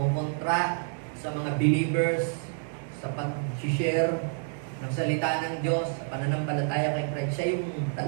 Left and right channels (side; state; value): left; silent; 58 dB below the other